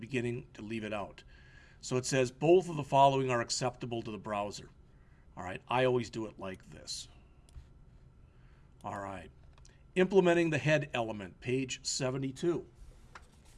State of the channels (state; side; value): identical; both; correlation 1.00